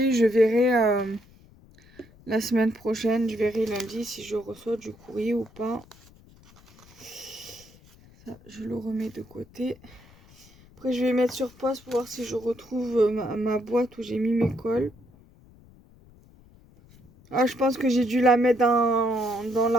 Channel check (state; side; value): noise; left; rumble, 26 dB below the sound